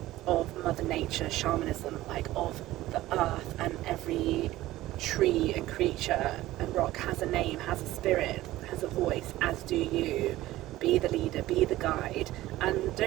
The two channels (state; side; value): quieter; left; 16.2 dB